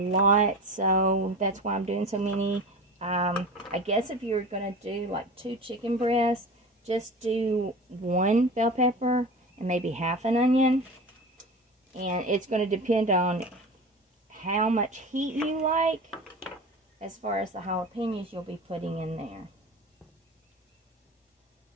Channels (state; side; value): normal; both; correlation 0.33